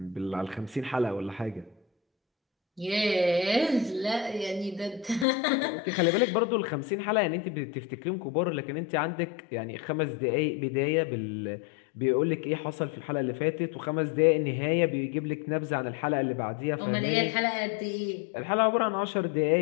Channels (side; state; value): right; drops out; at 5.2 s